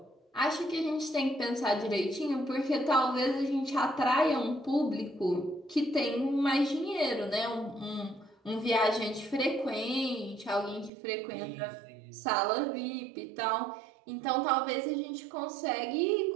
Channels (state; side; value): drops out; left; at 10.9 s